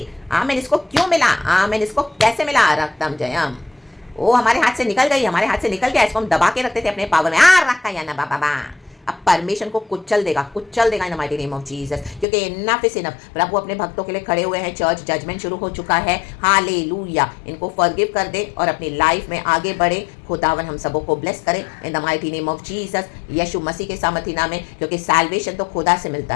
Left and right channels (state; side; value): drops out; right; at 12.2 s